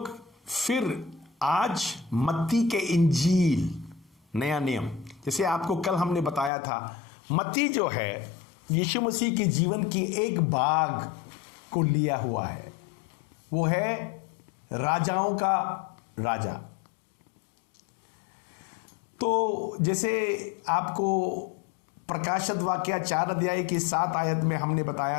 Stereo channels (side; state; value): right; drops out; at 6.5 s